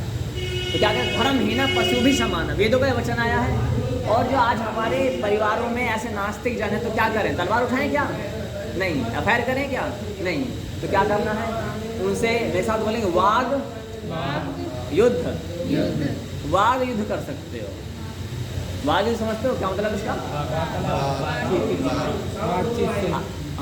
क्या कहते हैं, धर्महीन पशु भी समान, वेदों का वचन आया है। और जो आज हमारे परिवारों में ऐसे नास्तिक जन है, तो क्या करें? तलवार उठाएं क्या? नहीं। अफेयर करें क्या? नहीं। तो क्या करना है? उनसे मेरे साथ बोलेंगे वाग युद्ध, वाग युद्ध कर सकते हो। वाग युद्ध समझते हो क्या मतलब इसका?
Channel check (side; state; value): both; identical; correlation 1.00